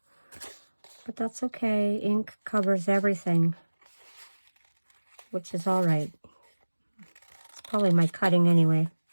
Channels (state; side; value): inverted; both; correlation -1.00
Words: But that's okay. Ink covers everything, which is all right. It's probably my cutting anyway.